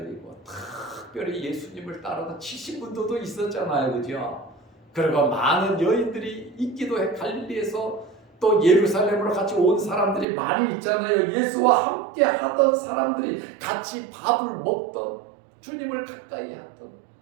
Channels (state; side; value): drops out; left; at 10.2 s